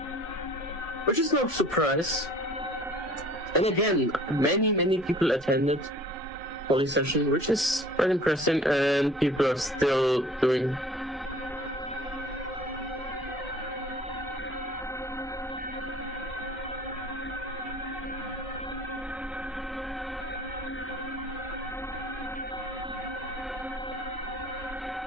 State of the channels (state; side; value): normal; both; correlation 0.49